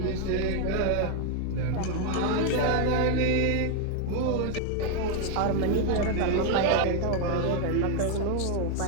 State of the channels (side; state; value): both; different; correlation 0.00